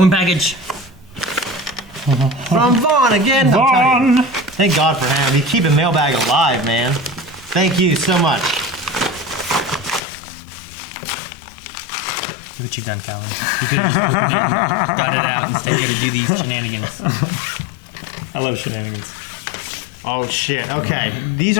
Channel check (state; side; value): drops out; right; at 10.0 s